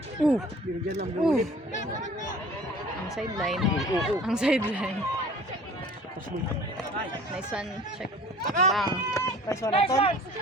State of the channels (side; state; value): both; normal; correlation 0.47